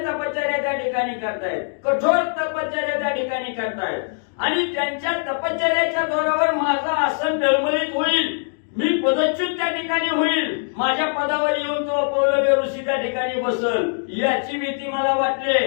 तपश्चर्या त्या ठिकाणी करतायत कठोर तपश्चर्या त्या ठिकाणी करतायत आणि त्यांच्या तपश्चर्याच्या जोरावर माझं आसन डळमळीत होईल मी पदच्युत त्या ठिकाणी होईल माझ्या पदावर येऊन तो पौलव्य ऋषी त्या ठिकाणी बसल याची भीती मला वाटली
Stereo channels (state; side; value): silent; right; digital silence